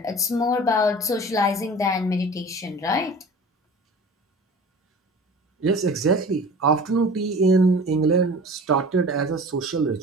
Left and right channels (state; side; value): normal; both; correlation 0.41